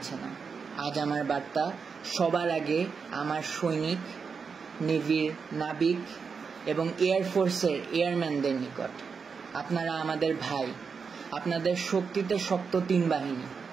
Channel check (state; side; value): quieter; left; 5.6 dB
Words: না, আজ আমার বার্তা সবার আগে আমার সৈনিক, নেভির নাবিক এবং এয়ারফোর্সের এয়ারম্যানদের নিকট। আপনারা আমাদের ভাই, আপনাদের শক্তিতে শক্ত 3 বাহিনী।